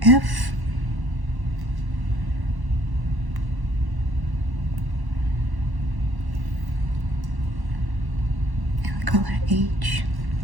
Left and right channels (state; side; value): late; left; 1.1 ms